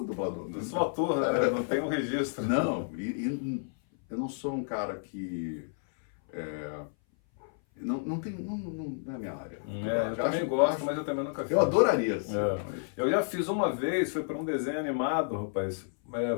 dublador. Eu sou ator, né? Não tem um registro. Não, e eu não sou um cara que... Não é a minha área. Eu também gosto, mas eu também nunca fiz. Eu adoraria. Assim, Eu já fiz uma vez, foi para um desenho animado, rapaz.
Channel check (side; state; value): right; silent; 56 dB below the other